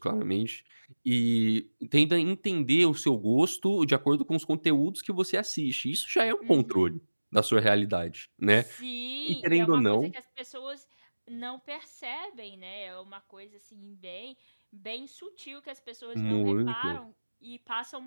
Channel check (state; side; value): inverted; both; correlation -1.00